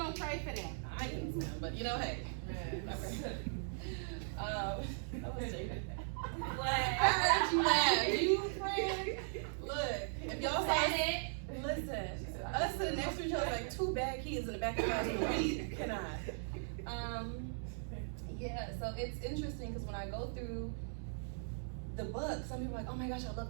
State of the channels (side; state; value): left; silent; digital silence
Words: pray for them. I can swim, but hey. I was joking. I heard you laugh. You friend. Look, if y'all saw it, listen. Us sitting next to each other like 2 bad kids in the back of the class. We cannot. Yeah. So it's interesting because when I go through the book, some people are like, oh my gosh, I love